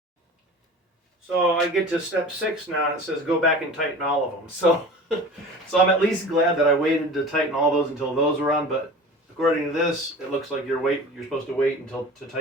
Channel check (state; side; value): normal; both; correlation 0.38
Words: So I get to step 6 now, and it says go back and tighten all of them. So I'm at least glad that I waited to tighten all those until those were on. But according to this, it looks like you're supposed to wait to